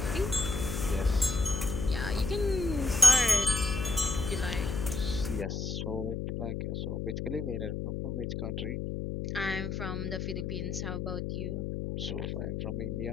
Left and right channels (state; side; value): noise; left; hum, 3 dB below the sound